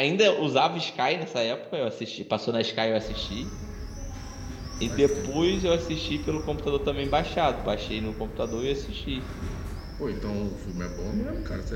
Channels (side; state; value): both; identical; correlation 1.00